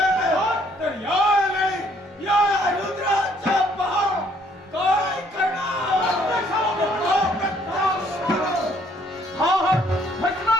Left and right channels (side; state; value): both; normal; correlation 0.65